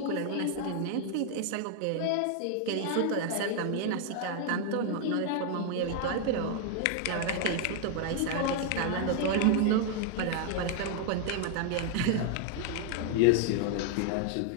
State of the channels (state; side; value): different; both; correlation 0.00